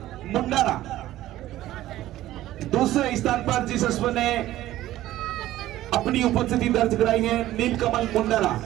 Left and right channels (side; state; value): left; quieter; 14.7 dB